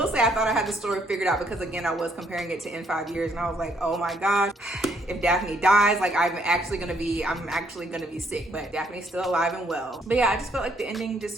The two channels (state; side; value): normal; both; correlation 0.69